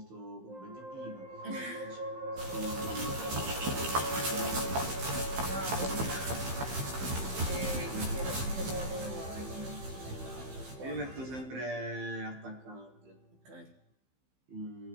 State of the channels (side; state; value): left; late; 15 ms